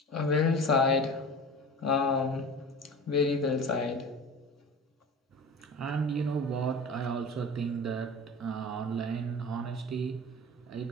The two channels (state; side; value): normal; both; correlation 0.36